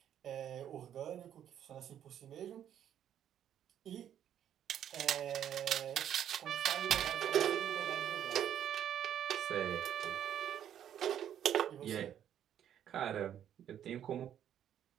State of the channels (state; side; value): quieter; left; 10.1 dB